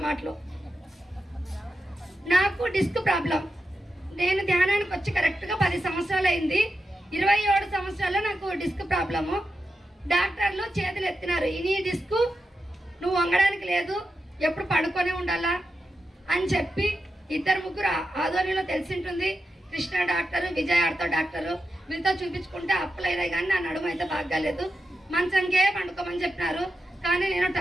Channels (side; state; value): both; normal; correlation 0.89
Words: మాటలు. నాకు డిస్క్ ప్రాబ్లం. నేను ధ్యానానికి వచ్చి కరెక్ట్గా 10 సంవత్సరాలు అయింది. 27 సంవత్సరాల్లో నాకు డిస్క్ ప్రాబ్లము. డాక్టర్లు చేతులు ఎత్తినారు, ఈ డిస్క్ నువ్వు వంగడానికి లేదు, ఎప్పుడు పడుకొనే ఉండాలా అని చెప్పి 2-3 ఆధ్వర్యంలో తెలిసి ఉంటుంది. కృష్ణ డాక్టరు, విజయ్ ఆర్తో డాక్టరు, వీళ్ళతో చూపించుకుంటే అప్పులైనా కానీ నా నడుము అయితే బాగాలేదు. మంచంకే పండుకోమని చెప్పినారు. కానీ నేను